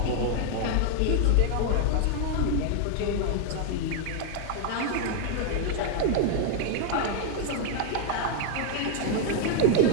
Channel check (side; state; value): both; different; correlation 0.00